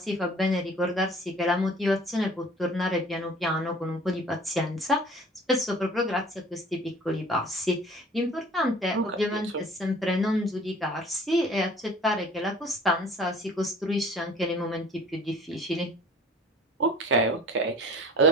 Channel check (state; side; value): normal; both; correlation 0.48